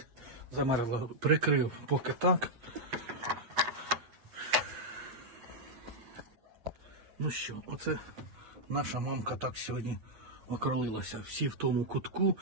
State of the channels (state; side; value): late; left; 8.0 ms